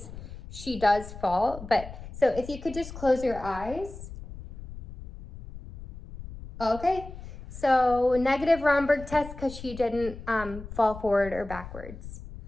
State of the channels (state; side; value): noise; left; rumble, 13 dB below the sound